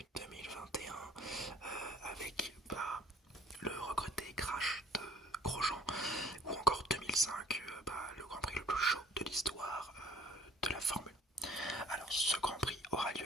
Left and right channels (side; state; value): both; normal; correlation 0.56